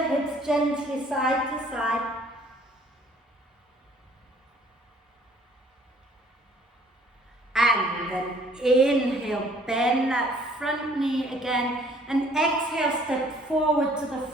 hips gently side to side. And then inhale, bend that front knee again. And exhale, step forward to the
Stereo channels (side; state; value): both; normal; correlation 0.58